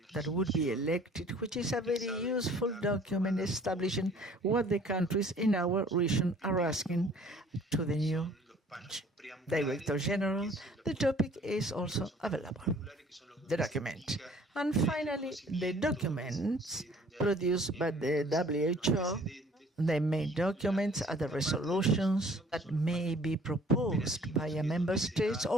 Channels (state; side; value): normal; both; correlation 0.54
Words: that would be elected, which is a very useful document establishing what the countries in our region are asking to the new Director General. The topic is also available, the document. And finally, the documents produced by the WHO. The main documents are the resolutions that may be proposed by a member state